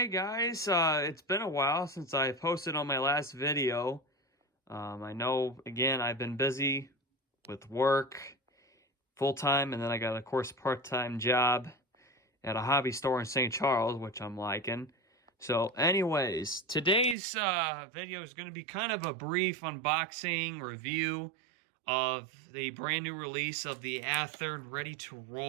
guys, it's been a while since I posted on my last video. I know, again, I've been busy with work full-time, and then I got, of course, a part-time job at a hobby store in St. Charles, which I'm liking. So anyways, today's video is going to be kind of a brief unboxing review of the brand new release of the Athern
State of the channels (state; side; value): drops out; left; at 17.2 s